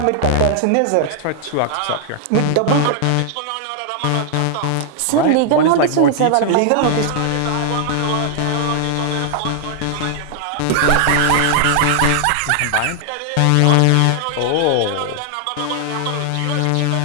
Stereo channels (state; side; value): different; both; correlation 0.00